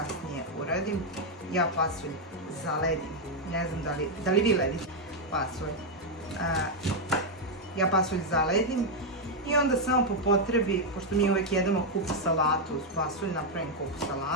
uradim, ja pasulj zaledim. Ne znam da li vi ledite pasulj. Ja pasulj zaledim i onda samo po potrebi, pošto mi uvek jedemo kupu salatu uz pasulj, napravim kupu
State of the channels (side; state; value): both; normal; correlation 0.00